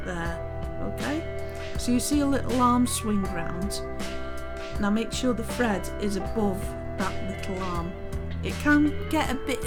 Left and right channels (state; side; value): identical; both; correlation 1.00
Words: there, okay? So you see a little arm swing round. Now make sure the thread is above that little arm. It can get a bit